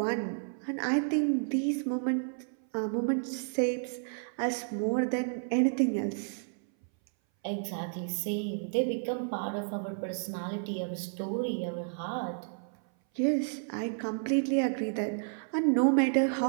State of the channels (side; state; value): left; silent; 57 dB below the other